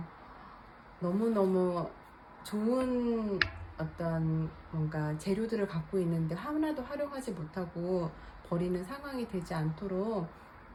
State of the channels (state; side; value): identical; both; correlation 1.00